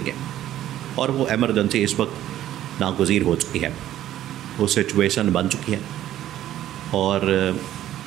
और वो एमरजेंसी इस वक्त नागुज़ीर हो चुकी है, वो सिचुएशन बन चुकी है, और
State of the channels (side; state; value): left; quieter; 12.7 dB